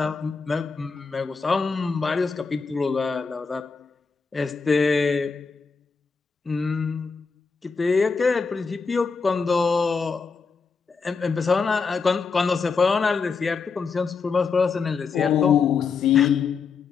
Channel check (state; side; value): quieter; right; 5.1 dB